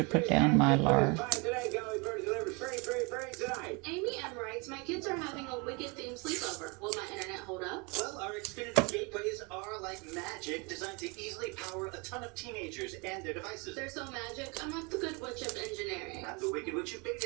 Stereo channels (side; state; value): left; quieter; 29.8 dB